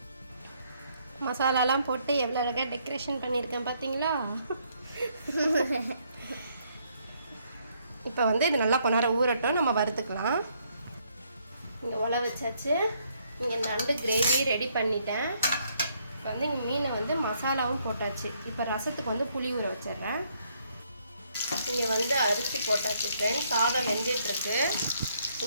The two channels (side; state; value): both; inverted; correlation -0.70